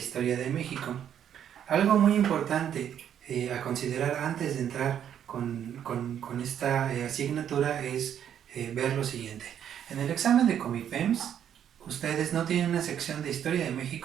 de México. Algo muy importante a considerar antes de entrar con esta asignatura es ver lo siguiente. En el examen de Comipems, ustedes no tienen una sección de historia de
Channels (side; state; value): left; quieter; 9.5 dB